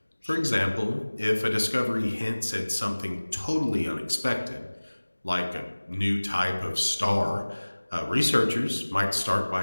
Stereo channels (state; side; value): inverted; both; correlation -1.00